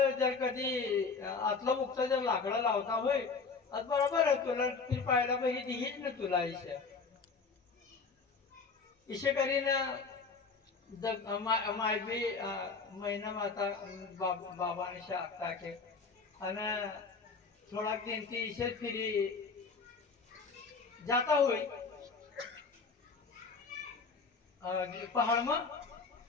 जर कधी आतला मुक्त जर लाकडा लावता होय आज बरोबर आहे तुला ती पाहायला पाहिजे दिहीच ना तुला इशे करीन मायबी महिना माता बाबाने शाखता के आणि थोडा दिन ती इशे फिरी जाता होई पहाड मग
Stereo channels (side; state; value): right; quieter; 4.7 dB